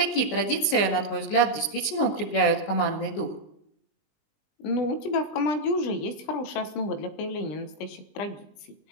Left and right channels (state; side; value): late; right; 20 ms